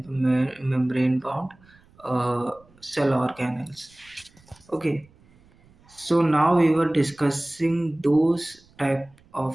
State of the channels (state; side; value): noise; right; rumble, 30 dB below the sound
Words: membrane bound cell organelles. Okay, so now we were discussing those type